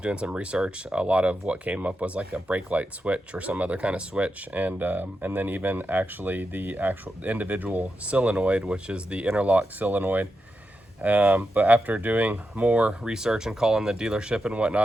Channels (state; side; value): normal; both; correlation 0.87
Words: some research, a lot of what came up was like a brake light switch or some other kind of switch. And then even actually the actual individual solenoid, which is the interlock solenoid. But after doing more research and calling the dealership and